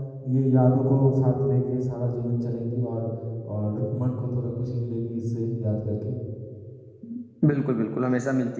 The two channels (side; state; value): both; identical; correlation 1.00